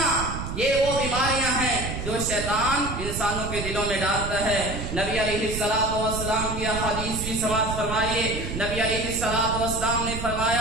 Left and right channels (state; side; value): noise; right; rumble, 6 dB below the sound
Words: یہ وہ بیماریاں ہیں جو شیطان انسانوں کے دلوں میں ڈالتا ہے۔ نبی علیہ السلام کی حدیث بھی سماعت فرمائیے۔ نبی علیہ السلام نے